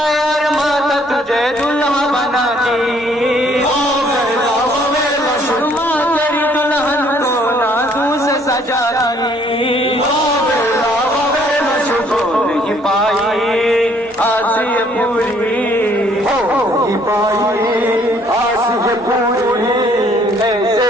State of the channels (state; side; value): normal; both; correlation 0.63